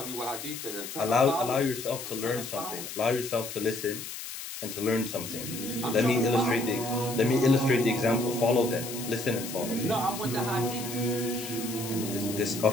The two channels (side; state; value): left; noise; hiss, 9 dB below the sound